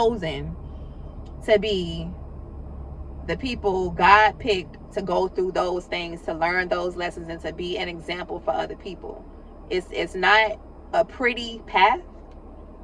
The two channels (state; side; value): identical; both; correlation 1.00